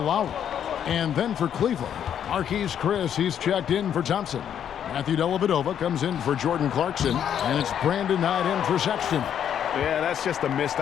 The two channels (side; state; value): right; quieter; 9.2 dB